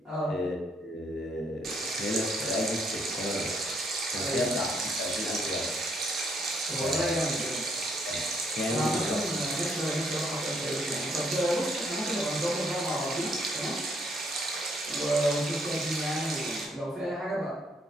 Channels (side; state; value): both; normal; correlation 0.70